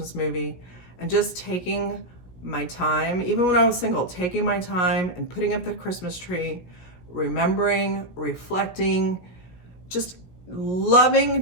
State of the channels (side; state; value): right; late; 17 ms